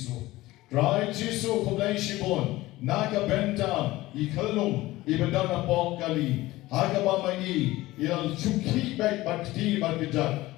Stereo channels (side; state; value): right; quieter; 18.1 dB